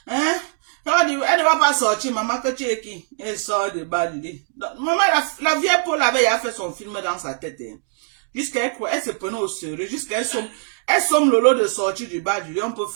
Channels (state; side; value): silent; left; digital silence